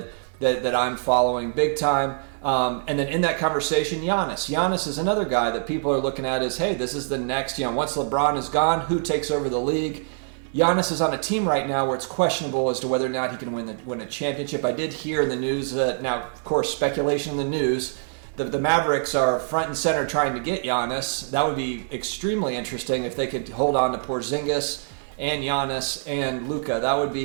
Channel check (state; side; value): silent; left; 57 dB below the other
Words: I'm following big time. And then in that conversation, Giannis. Giannis is another guy that people are looking at as, hey, this is the next, once LeBron is gone, who takes over the league? Giannis is on a team right now where it's questionable as to whether or not he can win a championship. I did hear in the news that, now, of course, speculation in the news, the Mavericks are front and center trying to get Giannis. That would be extremely interesting if they could hold on to Porzingis and Giannis and Luka. That would